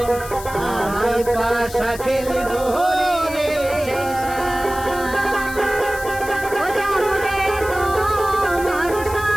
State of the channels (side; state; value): left; noise; hiss, 14 dB below the sound